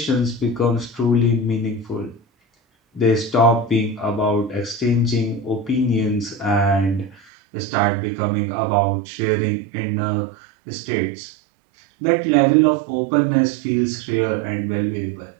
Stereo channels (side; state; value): left; drops out; at 7.2 s